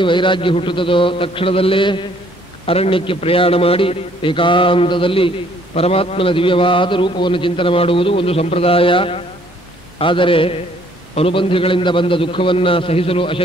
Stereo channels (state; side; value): normal; both; correlation 0.62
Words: ವೈರಾಗ್ಯ ಹುಟ್ಟುತ್ತದೋ ತಕ್ಷಣದಲ್ಲೇ ಅರಣ್ಯಕ್ಕೆ ಪ್ರಯಾಣ ಮಾಡಿ ಏಕಾಂತದಲ್ಲಿ ಪರಮಾತ್ಮನ ದಿವ್ಯವಾದ ರೂಪವನ್ನು ಚಿಂತನೆ ಮಾಡುವುದು ಒಂದು ಸಂಪ್ರದಾಯ. ಆದರೆ ಅನುಬಂಧಿಗಳಿಂದ ಬಂದ ದುಃಖವನ್ನು ಸಹಿಸಲು